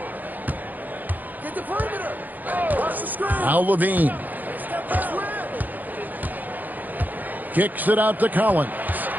Get the perimeter. Watch the screen. Al Levine. Kicks it out to Collins.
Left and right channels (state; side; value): late; left; 0.084 ms